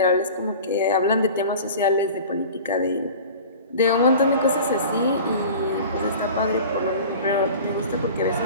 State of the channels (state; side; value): inverted; both; correlation -0.39